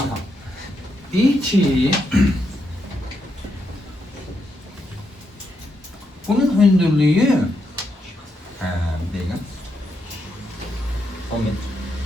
Deyir ki, bunun hündürlüğü bir dakika. 10 metre.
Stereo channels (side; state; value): both; normal; correlation 0.81